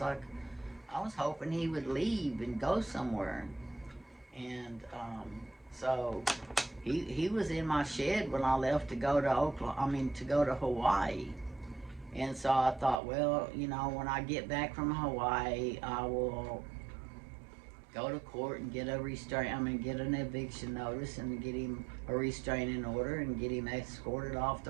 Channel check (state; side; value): drops out; left; at 13.0 s